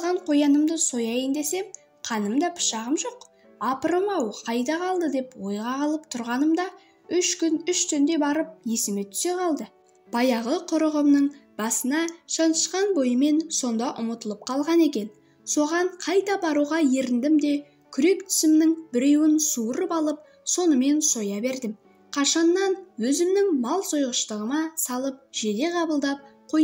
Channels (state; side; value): identical; both; correlation 1.00